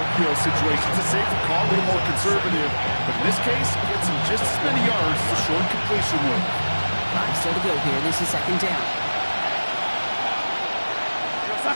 situation. It's a safer call, a little more conservative. But in this case, gets him just as many yards as a short completion would. 5 still to go here. This is 2nd down.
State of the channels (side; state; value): both; inverted; correlation -1.00